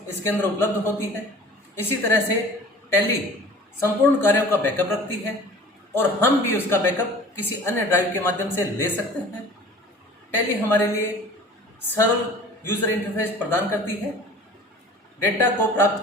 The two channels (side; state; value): both; normal; correlation 0.45